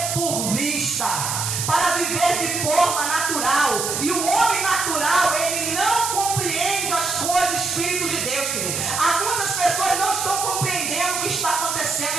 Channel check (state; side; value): noise; right; hiss, 2 dB below the sound